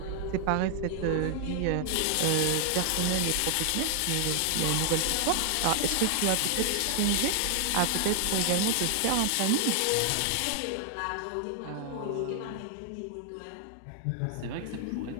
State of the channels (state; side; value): different; both; correlation 0.00